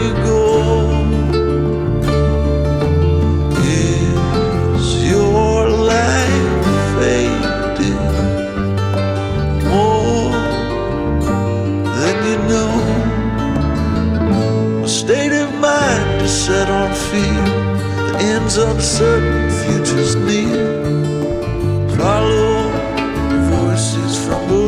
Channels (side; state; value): both; identical; correlation 1.00